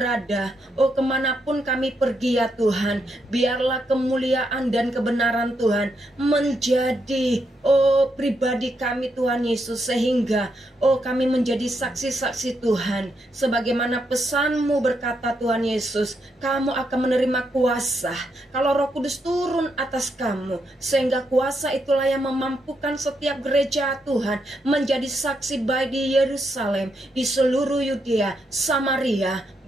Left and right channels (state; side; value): normal; both; correlation 0.80